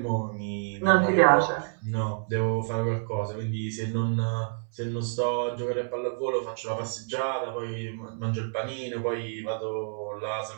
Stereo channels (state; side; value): silent; left; digital silence